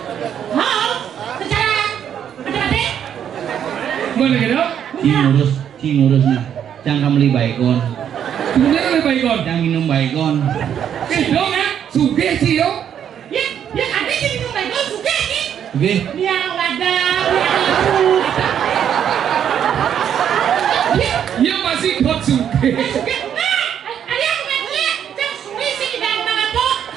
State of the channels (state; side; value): quieter; left; 9.1 dB